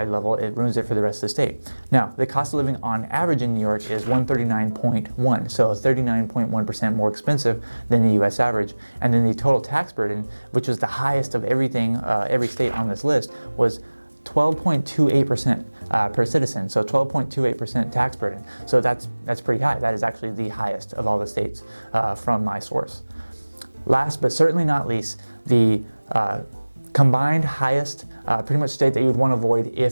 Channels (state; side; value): inverted; both; correlation -1.00